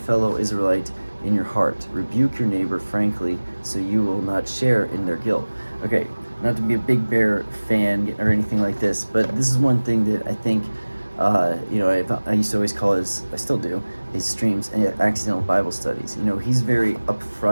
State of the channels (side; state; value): both; inverted; correlation -1.00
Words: Israelite in your heart. Rebuke your neighbor frankly, so you will not share in their guilt. Okay, not to be a Big Bear fan or anything like this, but this is one thing that I think, I used to always call I still do, his streams accidental Bible studies. He's very